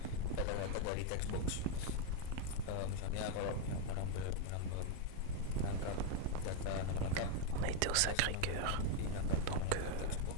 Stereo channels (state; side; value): different; both; correlation 0.01